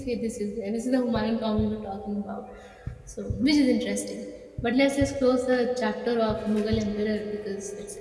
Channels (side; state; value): both; identical; correlation 1.00